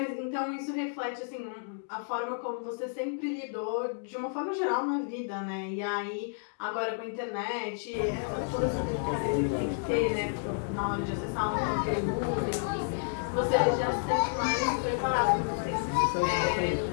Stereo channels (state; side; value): silent; right; digital silence